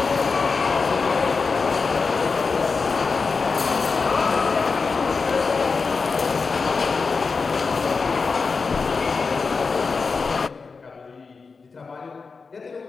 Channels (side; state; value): right; quieter; 4.7 dB